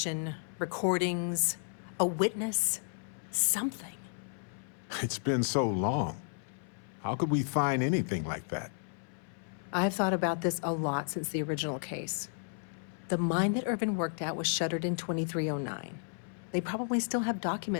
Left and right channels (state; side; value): silent; right; 56 dB below the other